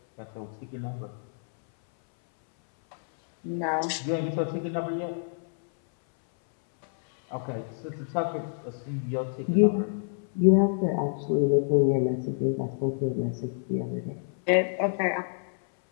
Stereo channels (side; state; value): right; silent; 60 dB below the other